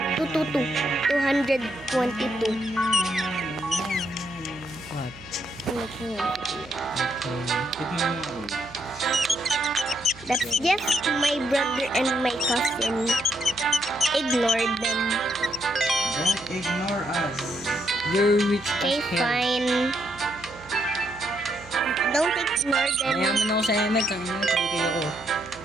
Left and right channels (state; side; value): noise; right; hum, 20 dB below the sound